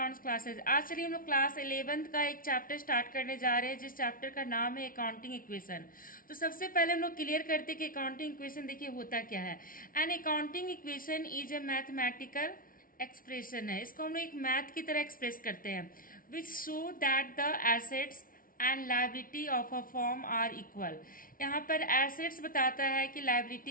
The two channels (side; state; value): right; late; 0.41 ms